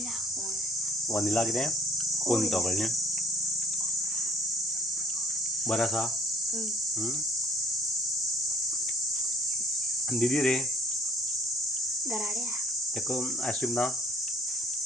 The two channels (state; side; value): normal; both; correlation 0.59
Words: वनिला कितें कोण तो कळ्ळें बरें आसा दीदी रे तेका आईस्क्रीम ना